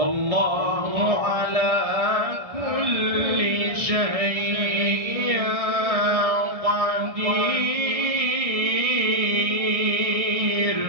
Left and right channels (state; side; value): late; left; 1.6 ms